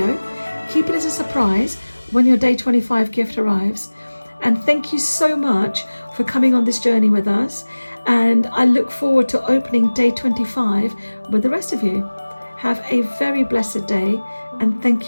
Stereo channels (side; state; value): both; inverted; correlation -1.00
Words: Keep it as a surprise when your day 25 gift arrives. And thank you so much for coming on this journey with us. And I look forward to opening day 25 with the rest of you. Have a very blessed day, and thank